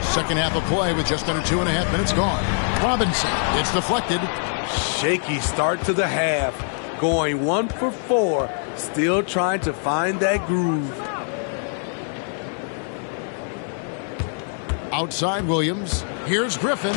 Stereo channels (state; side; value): silent; right; 63 dB below the other